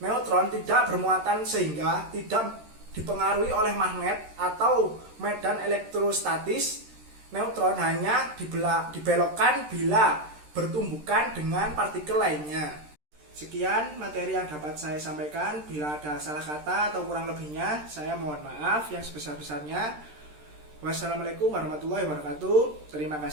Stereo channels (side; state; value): left; late; 13 ms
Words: tidak bermuatan sehingga tidak dipengaruhi oleh magnet atau medan elektrostatis. Neutron hanya dibelokkan bila bertumbukan dengan partikel lainnya. Sekian materi yang dapat saya sampaikan. Bila ada salah kata atau kurang lebihnya, saya mohon maaf yang sebesar-besarnya. Wassalamualaikum warahmatullahi wabarakatuh. Terima